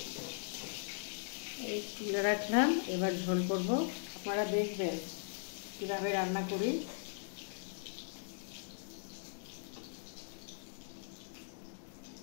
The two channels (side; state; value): right; silent; digital silence